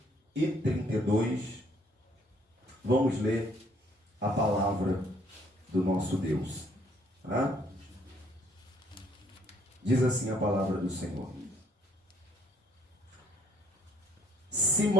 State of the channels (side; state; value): both; normal; correlation 0.64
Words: e 32. Vamos ler a palavra do nosso Deus. Diz assim a palavra do Senhor: